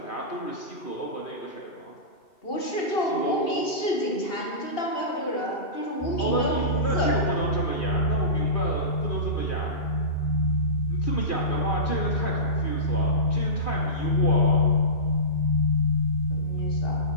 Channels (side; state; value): right; late; 2.8 ms